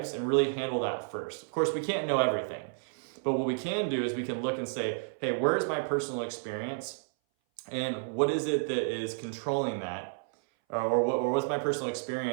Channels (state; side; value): silent; left; 57 dB below the other